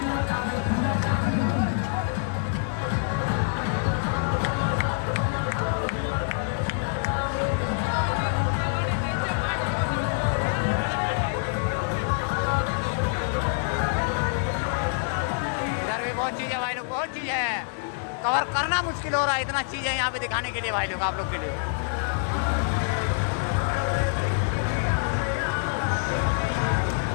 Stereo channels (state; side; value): silent; right; 61 dB below the other